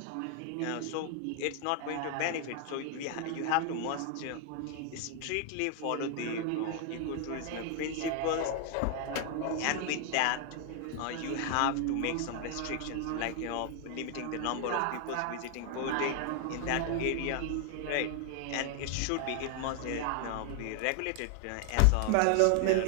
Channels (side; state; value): both; different; correlation 0.00